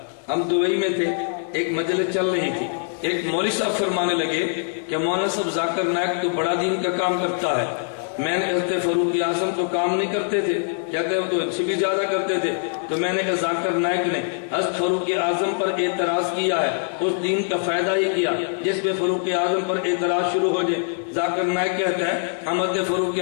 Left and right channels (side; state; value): right; silent; digital silence